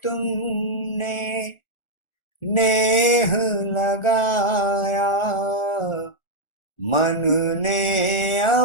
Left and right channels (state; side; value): late; right; 1.4 ms